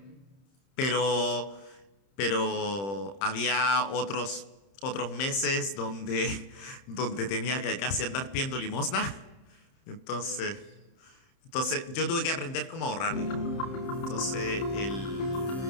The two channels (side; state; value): right; late; 30 ms